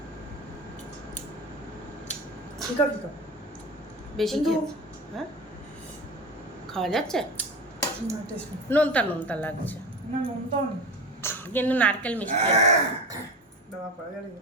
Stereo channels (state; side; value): normal; both; correlation 0.28